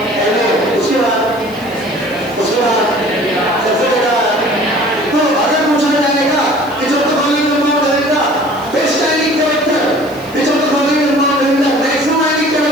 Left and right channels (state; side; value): noise; right; hiss, 23 dB below the sound